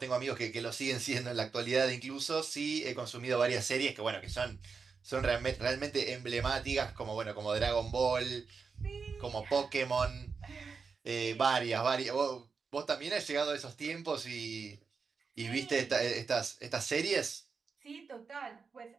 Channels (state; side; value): quieter; left; 5.2 dB